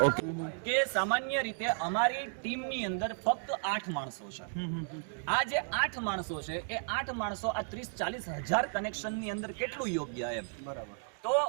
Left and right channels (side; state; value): left; silent; 55 dB below the other